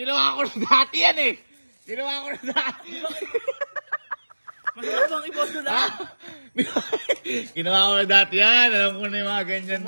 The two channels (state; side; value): inverted; both; correlation -1.00